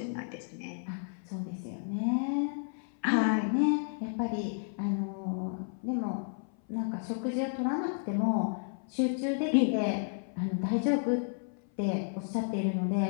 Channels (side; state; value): right; silent; 56 dB below the other